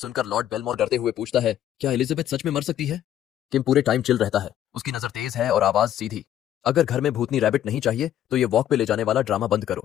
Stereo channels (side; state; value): right; quieter; 11.3 dB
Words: लॉर्ड बेलमोर डरते हुए पूछता है, क्या एलिजाबेथ सच में मर सकती है? किम पूरे टाइम चिल रहता है। उसकी नजर तेज है और आवाज सीधी, अगर घर में भूतनी रैबिट नहीं चाहिए तो ये वॉक पे ले जाने वाला ड्रामा बंद